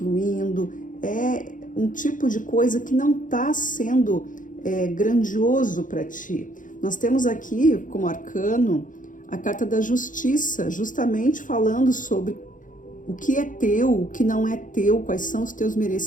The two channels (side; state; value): right; late; 0.38 ms